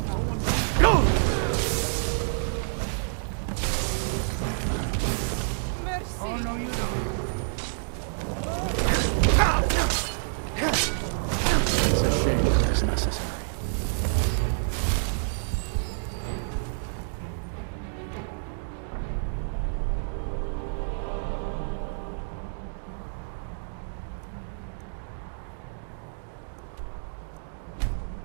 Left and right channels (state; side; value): silent; left; digital silence